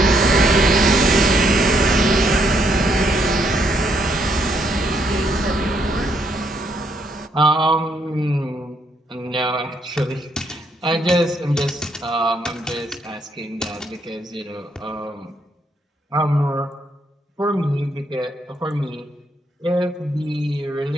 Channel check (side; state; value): both; normal; correlation 0.74